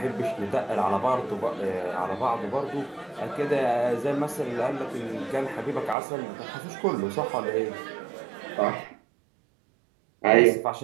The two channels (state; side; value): drops out; left; at 6.0 s